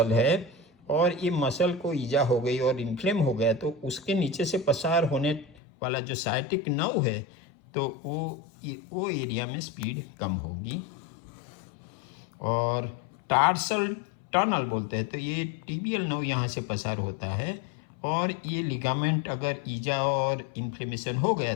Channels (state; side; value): drops out; right; at 5.6 s